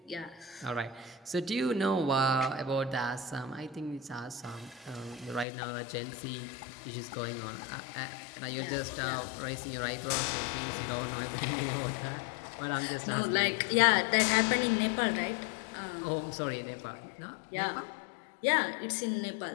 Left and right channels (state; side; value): drops out; right; at 5.5 s